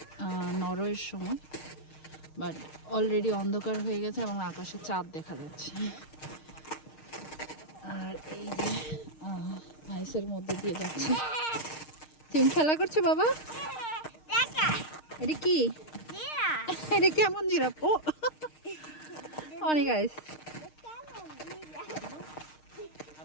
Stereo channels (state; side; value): late; right; 6.5 ms